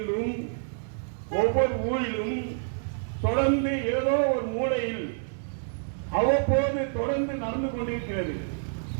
ஒவ்வொரு ஊரிலும் தொடர்ந்து ஏதோ ஒரு மூலையில் அவ்வப்போது தொடர்ந்து நடந்து கொண்டிருக்கிறது.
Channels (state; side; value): silent; left; 59 dB below the other